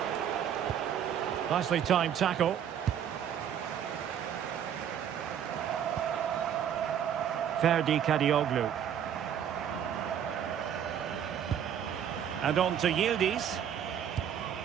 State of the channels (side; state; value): left; quieter; 9.1 dB